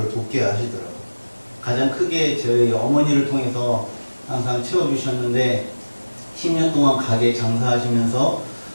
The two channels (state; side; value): inverted; both; correlation -1.00